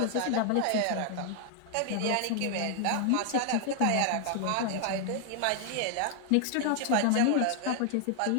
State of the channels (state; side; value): different; both; correlation 0.00